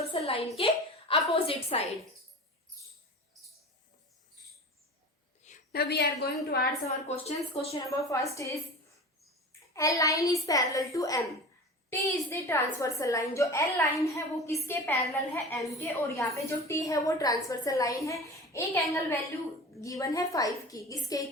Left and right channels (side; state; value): both; normal; correlation 0.34